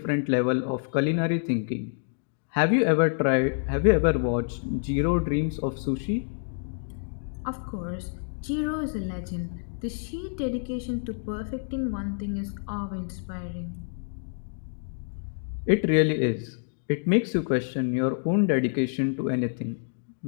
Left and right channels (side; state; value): right; silent; digital silence